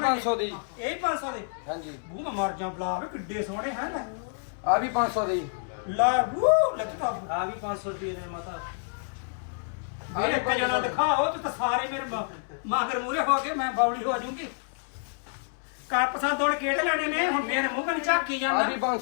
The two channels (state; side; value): silent; right; 59 dB below the other